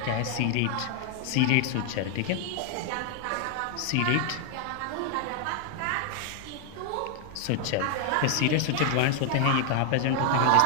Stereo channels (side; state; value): both; different; correlation 0.00